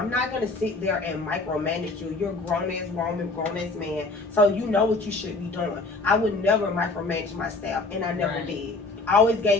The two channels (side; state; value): right; quieter; 3.4 dB